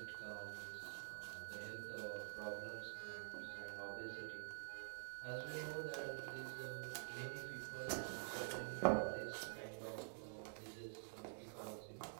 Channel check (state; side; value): silent; left; digital silence